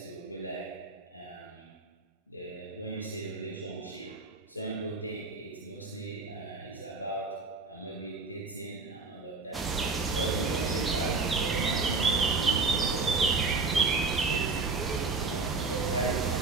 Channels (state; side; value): quieter; left; 4.1 dB